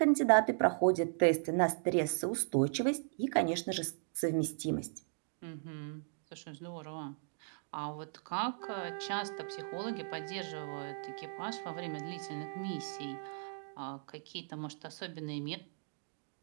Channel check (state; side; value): silent; left; digital silence